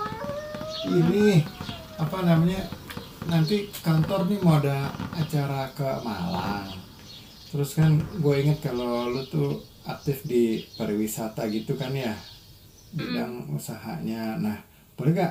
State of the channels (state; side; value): identical; both; correlation 1.00